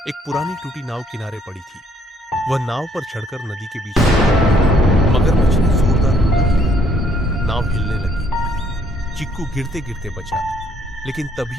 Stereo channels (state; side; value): normal; both; correlation 0.66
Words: एक पुरानी टूटी नाव किनारे पड़ी थी। वह नाव पर चढ़कर नदी के बीच में मगरमच्छ ने जोरदार हमला किया। नाव हिलने लगी। चीकू गिरते गिरते बचा, लेकिन